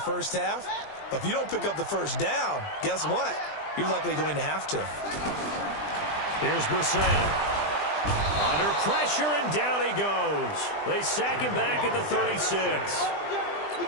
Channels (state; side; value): late; right; 20 ms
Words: half. But if you don't pick up the 1st down, guess what? You're likely going to have to. Here's Brissett. Under pressure, and down he goes. They sack him back at the 36.